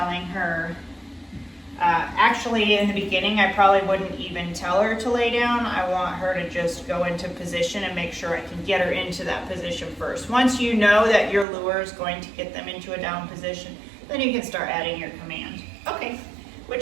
her, actually in the beginning I probably wouldn't even tell her to lay down. I want her to just go into position and make sure I can get her into that position first. Once you know that your lure is going to get them into a down position, then you can start adding your command. Okay, which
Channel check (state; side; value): drops out; left; at 11.5 s